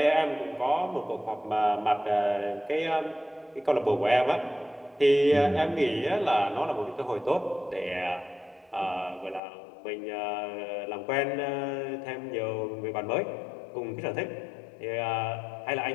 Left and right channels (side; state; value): right; drops out; at 9.4 s